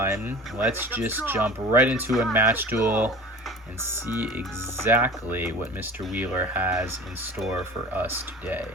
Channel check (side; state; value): both; normal; correlation 0.38